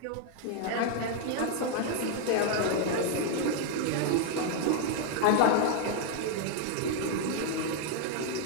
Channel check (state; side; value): different; both; correlation 0.00